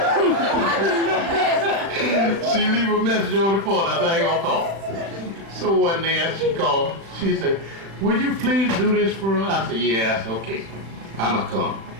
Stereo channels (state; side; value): late; left; 36 ms